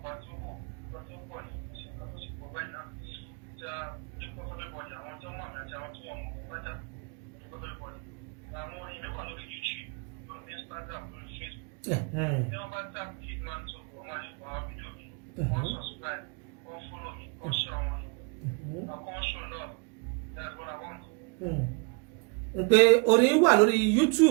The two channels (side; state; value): left; quieter; 32.4 dB